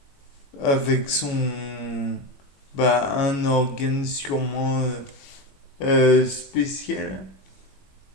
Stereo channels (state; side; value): late; right; 21 ms